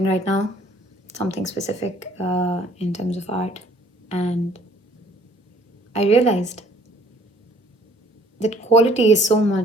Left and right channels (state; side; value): normal; both; correlation 0.58